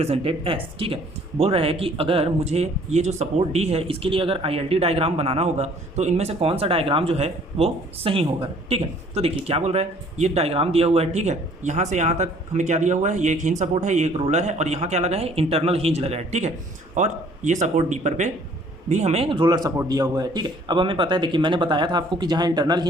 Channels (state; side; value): normal; both; correlation 0.57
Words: S. ठीक है, बोल रहा है कि अगर मुझे ये जो सपोर्ट डी है इसके लिए अगर ILD डायग्राम बनाना होगा तो इनमें से कौन सा डायग्राम जो है वो सही होगा। ठीक है, तो देखिए क्या बोल रहा है, ये डायग्राम दिया हुआ है। ठीक है, यहाँ से यहाँ तक हमें क्या दिया हुआ है, ये एक हिंज सपोर्ट है, ये एक रोलर है और यहाँ क्या लगा है, इंटरनल हिंज लगा है। ठीक है, और ये सपोर्ट डी पर पे भी हमें रोलर सपोर्ट दिया हुआ है। ठीक है, अब हमें पता है, देखिए मैंने बताया था आपको कि जहाँ इंटरनल